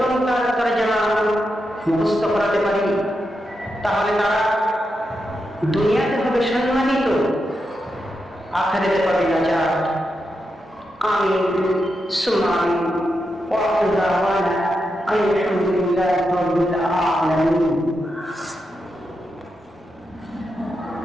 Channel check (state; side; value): normal; both; correlation 0.86